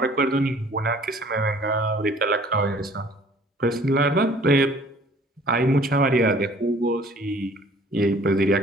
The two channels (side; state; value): both; normal; correlation 0.54